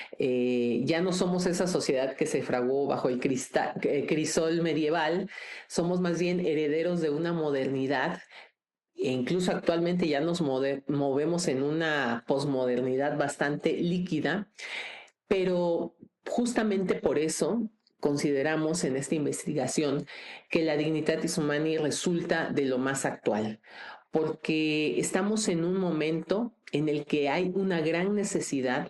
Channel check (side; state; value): both; identical; correlation 1.00